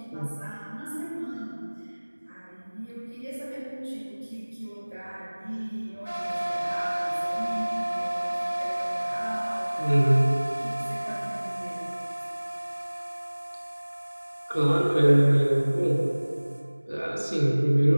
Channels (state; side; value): inverted; both; correlation -1.00